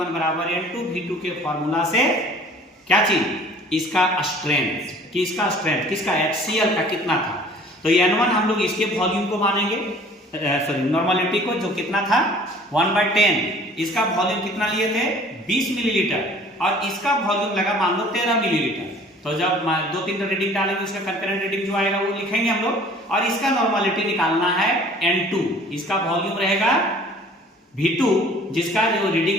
बराबर N2V2 के फॉर्मूला से क्या चीज, इसका स्ट्रेंथ। किसका स्ट्रेंथ, किसका, HCl का कितना था। तो N1 हम लोग इसके वॉल्यूम को मानेंगे, सॉरी नॉर्मलिटी को, जो कितना था 1/10। इसका वॉल्यूम कितना लिए थे 20 मिलीलीटर और इसका वॉल्यूम लगा मान लो 13 मिलीलीटर। तो जब 2-3 रीडिंग डालेंगे उसका कंकरेंट रीडिंग जो आएगा वो लिखेंगे हम लोग। और इसका नॉर्मलिटी निकालना है N2, इसका वॉल्यूम रहेगा V2 जिसका जो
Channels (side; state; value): both; normal; correlation 0.50